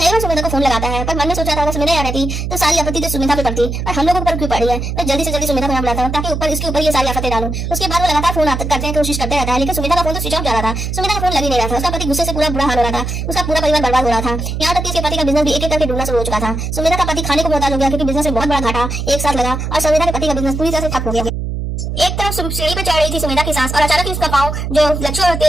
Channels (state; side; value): noise; right; hum, 4 dB below the sound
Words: बार सुमेधा को फोन लगाता है, पर मन में सोचा था अगर सुमेधा यहाँ रहती तो सारी आपत्ति तो सुमेधा पे पड़ती, पर हम लोगों पर क्यों पड़ी है। मैं जल्दी से जल्दी सुमेधा को यहाँ बुलाता हूँ ताकि ऊपर इसके ऊपर ये सारी आफतें डालूं। उसके बाद वो लगातार फोन करते हैं, कोशिश करते रहता है, लेकिन सुमेधा का फोन तो स्विच ऑफ जा रहा था। सुमेधा का फोन लग ही नहीं रहा था। उसका पति गुस्से से पूरा बुरा हाल हो रहा था, उसका पूरा परिवार बर्बाद हो रहा था। यहाँ तक कि उसके पति का बिजनेस भी एक एक करके डूबना शुरू हो चुका था। सुमेधा का पति खाने को मोहताज हो गया क्योंकि बिजनेस में बहुत बड़ा घाटा एक साथ लगा और सुमेधा के पति का बिजनेस पूरी तरह से ठप हो गया। एक तरफ सीढ़ी पे चढ़ रही थी सुमेधा की सास और अचानक ही उसका पाँव जो लच्छू और